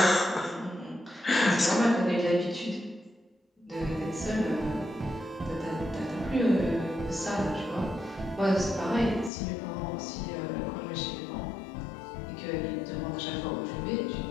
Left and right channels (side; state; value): right; drops out; at 9.3 s